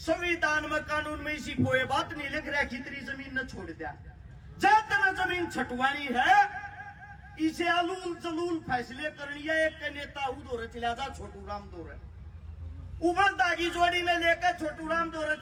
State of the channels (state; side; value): identical; both; correlation 1.00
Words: में, कानून में इसी कोई बात नहीं लिख रहा कि तेरी जमीन न छोड़ दिया। जब तक जमीन छटवानी है, इसे अलूल जलूल फैसले करनी है। एक के नेता दौरे चला जा, छोटू राम दौरे उमर दागी जोड़ी में लेकर छोटू राम दौरे